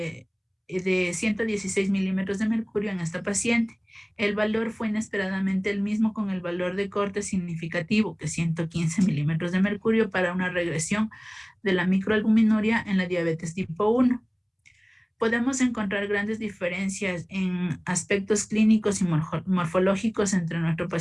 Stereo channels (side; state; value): both; identical; correlation 1.00